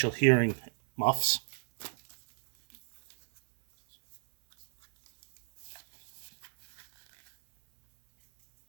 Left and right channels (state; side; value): silent; left; 57 dB below the other